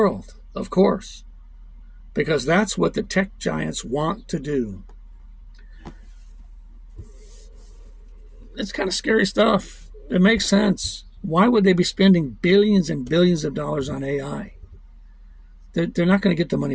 of course, because that's what the tech giants want to do. It's kind of scary stuff. It makes sense. Why would they be spending billions and billions of dollars on AI? They're not going to get the money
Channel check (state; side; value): identical; both; correlation 1.00